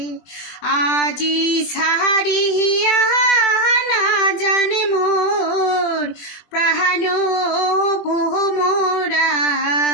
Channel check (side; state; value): right; late; 20 ms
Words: আজি সাহারিয়া না জানে মোর প্রাণ ভোমরা